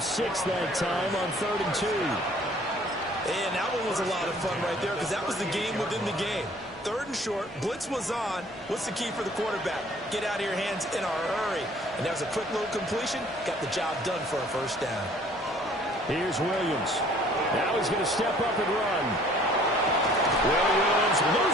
6 that time on 3rd and 2. And that one was a lot of fun right there because that was the game within the game. 3rd and short, blitz was on. What's the key for the quarterback? Get out of your hands in a hurry. And that was a quick little completion. Got the job done for a first down. Here's Williams. Now he's going to step up and run. Williams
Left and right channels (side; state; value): both; normal; correlation 0.55